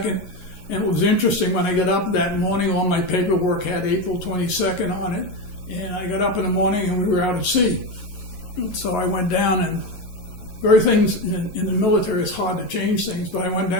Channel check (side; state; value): right; late; 11 ms